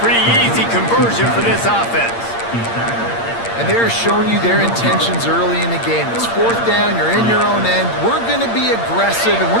pretty easy conversion for this offense. And they're showing you their intentions early in the game. It's 4th down. You're in your own end. We're going to be aggressive, and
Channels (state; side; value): late; right; 8.7 ms